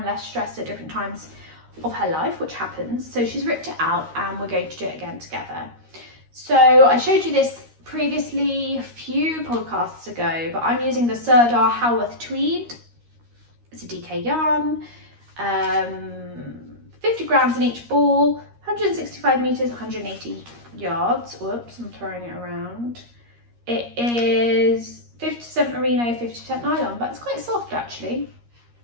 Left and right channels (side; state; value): left; late; 13 ms